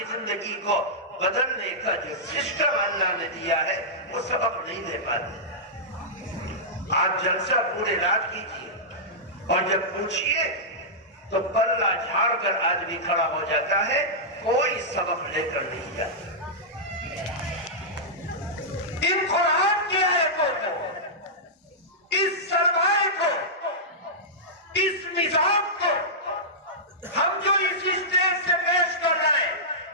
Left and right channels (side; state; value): both; normal; correlation -0.12